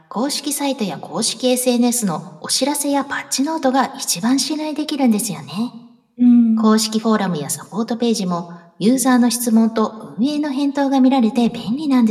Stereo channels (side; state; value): both; identical; correlation 1.00